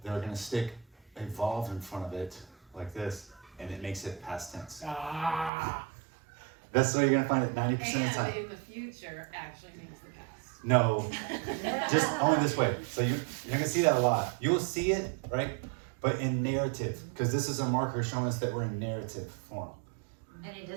they're gonna stick evolve in front of it like this, and it makes it past tense. Ah. That's what you're gonna find it 90% of the And time. in the future actually means the past. No, just only this way. So you're gonna see that a lot. You will see it, right? But in narrative, because this is a marker showing us that we're in narrative form. And it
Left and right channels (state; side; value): drops out; left; at 5.5 s